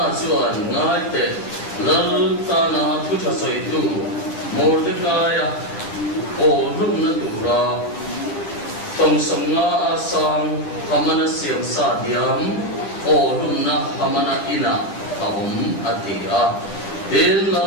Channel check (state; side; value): late; right; 10 ms